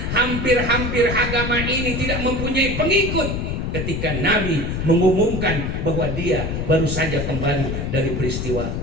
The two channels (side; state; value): left; noise; rumble, 3 dB below the sound